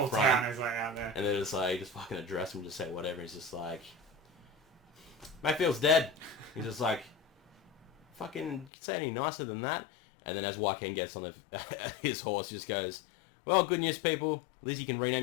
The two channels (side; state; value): right; drops out; at 8.7 s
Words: front, town is like out there, and they're just like, just fucking address him, just say whatever. He's just like, Mayfield's dead. He's just like, fucking say any nicer than that. And then as Joaquin gets on his horse, he just goes, well, good news, people. At least you can